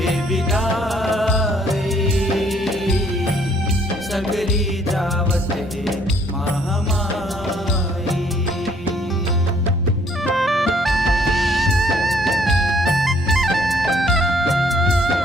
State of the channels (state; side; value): normal; both; correlation 0.64